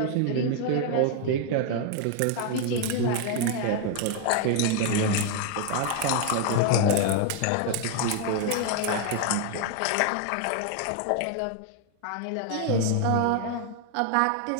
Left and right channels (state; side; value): different; both; correlation 0.00